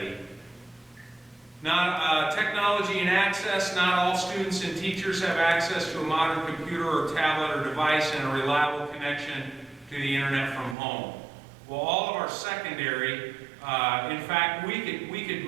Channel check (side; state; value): left; drops out; at 10.8 s